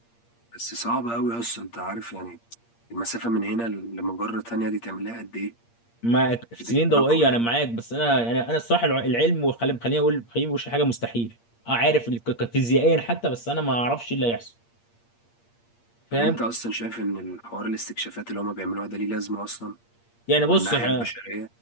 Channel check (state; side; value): late; right; 8.6 ms